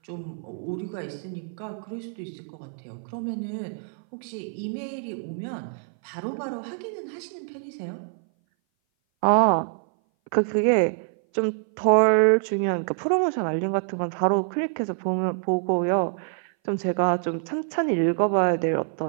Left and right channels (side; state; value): left; silent; 58 dB below the other